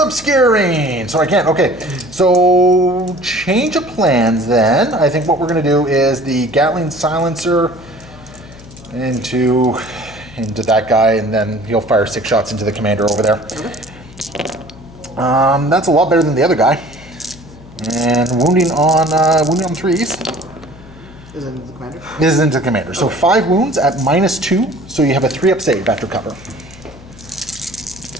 So I can't. Okay. So change of plans then. I think what we're going to do is the Gatling Silencer into that guy, and then he'll fire 6 shots into the commander over there. Okay. That's a lot better than the other guy. And wounding on 3s. Is it into the commander? This is into the commander. So 5 wounds at -2. So you have a 3 up save after cover.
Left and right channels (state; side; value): noise; left; hum, 20 dB below the sound